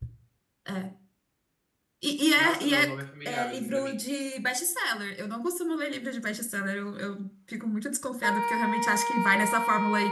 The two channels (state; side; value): identical; both; correlation 1.00